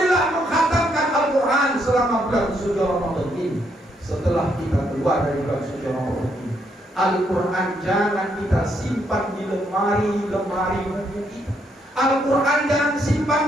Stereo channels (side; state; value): both; normal; correlation 0.74